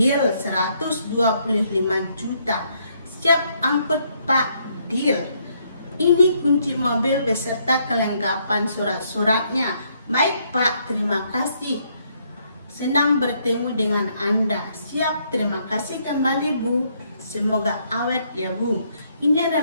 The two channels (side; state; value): both; inverted; correlation -0.71